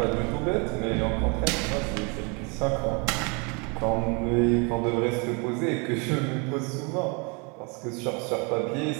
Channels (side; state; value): left; quieter; 32.2 dB